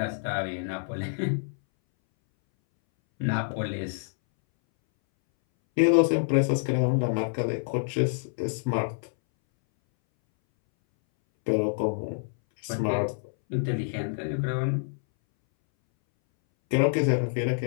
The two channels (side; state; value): right; silent; 60 dB below the other